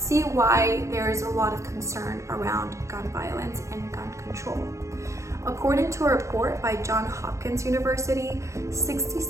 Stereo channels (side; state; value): left; late; 0.14 ms